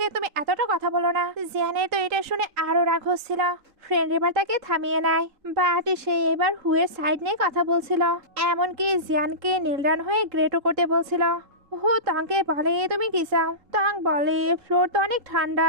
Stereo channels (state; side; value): late; left; 3.8 ms